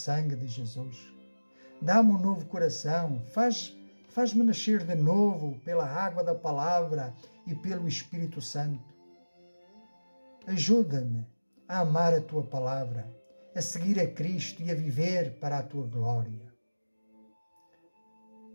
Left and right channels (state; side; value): inverted; both; correlation -1.00